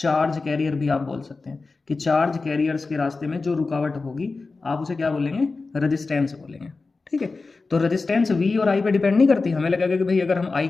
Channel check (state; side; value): quieter; right; 3.9 dB